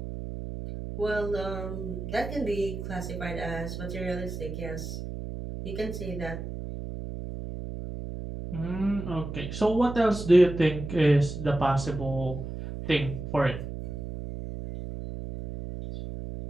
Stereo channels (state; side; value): noise; right; hum, 7 dB below the sound